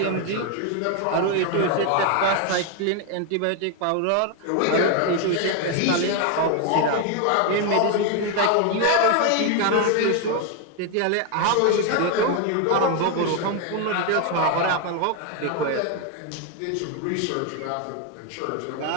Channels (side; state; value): both; different; correlation 0.01